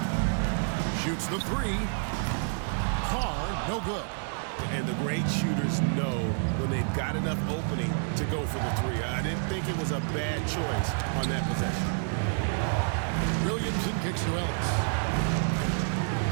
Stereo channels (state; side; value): silent; left; 59 dB below the other